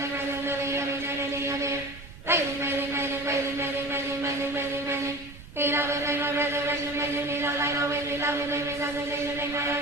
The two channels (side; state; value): right; noise; rumble, 17 dB below the sound